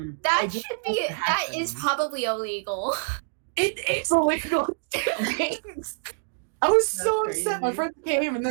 I just should be. let it That is happen. probably illegal. It's illegal. I was so That's upset. My crazy. friends came and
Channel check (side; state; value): left; silent; digital silence